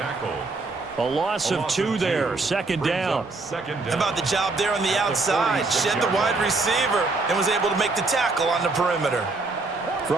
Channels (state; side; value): quieter; left; 3.5 dB